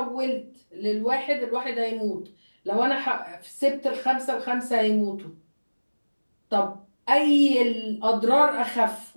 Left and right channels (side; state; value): both; inverted; correlation -1.00